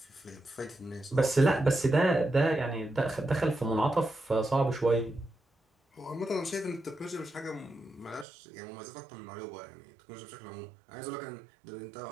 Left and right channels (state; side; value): drops out; left; at 8.2 s